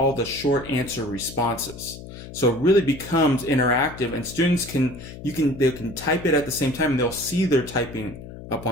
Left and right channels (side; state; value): left; noise; hum, 14 dB below the sound